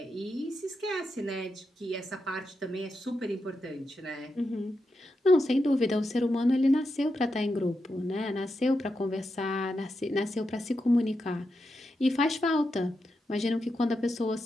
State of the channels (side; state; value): both; normal; correlation 0.86